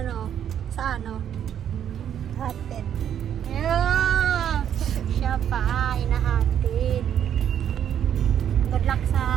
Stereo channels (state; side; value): quieter; left; 9.5 dB